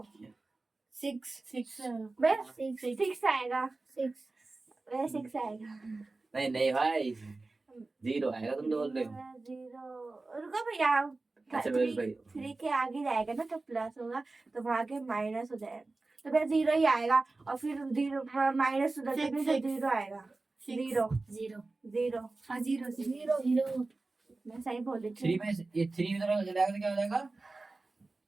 6 आएगा। 6 आएगा। नहीं नहीं भाई, 0 आएगा। तुम तो बोल रहे हो 0। रुको भैया, अच्छा भाई 3 के आगे जाएगा ना तो प्लस होगा, तो वहां के माइनस हो जाएगा, तो फिर 0 ही आएगा। और फिर 0 माइनस उधर से 0 आएगा। 0 मैं सही बोल रही 3 में ये 3 इधर चला जाएगा तो क्या हो जाएगा?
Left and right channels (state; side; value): quieter; left; 3.4 dB